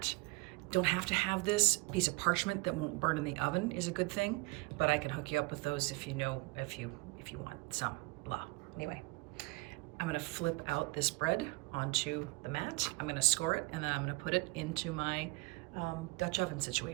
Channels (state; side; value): quieter; left; 25.3 dB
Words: Don't have to have this. Piece of parchment that won't burn in the oven is a good thing, but I can hook you up with those if you want some, blah. Anyway, I'm gonna flip out this bread onto the mat. I'm gonna score it, and then I'm gonna put it into my Dutch oven